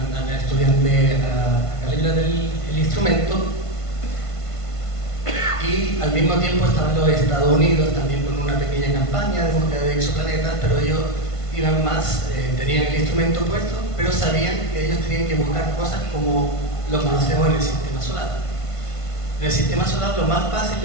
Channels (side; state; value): right; late; 1.5 ms